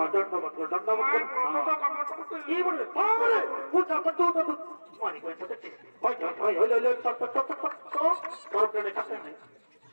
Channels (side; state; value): both; inverted; correlation -1.00